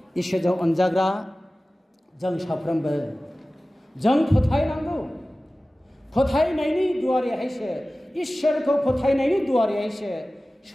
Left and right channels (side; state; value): both; normal; correlation 0.97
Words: इसोरजों अनजाग्रा जों साफ्रोमबो जों फोथायनांगौ। फोथायनायनि दुवारैहायसो, इसोरखौ फोथायनायनि दुवारैहायसो